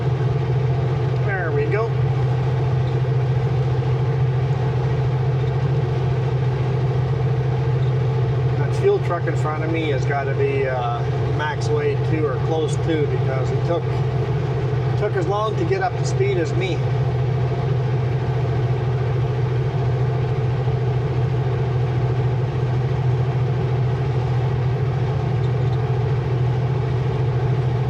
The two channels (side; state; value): both; identical; correlation 1.00